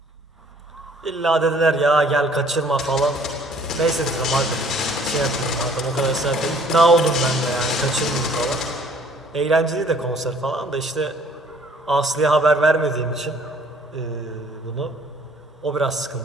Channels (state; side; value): normal; both; correlation 0.57